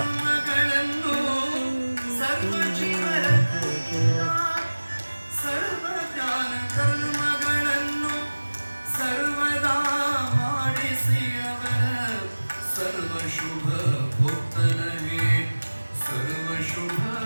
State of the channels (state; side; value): inverted; both; correlation -1.00